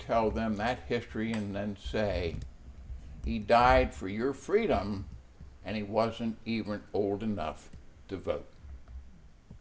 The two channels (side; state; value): both; identical; correlation 1.00